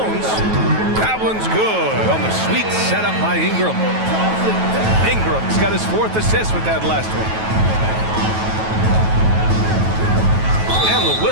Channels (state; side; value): late; left; 9.2 ms